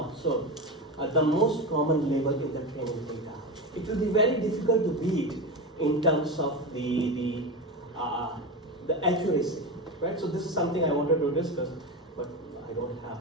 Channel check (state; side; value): normal; both; correlation 0.20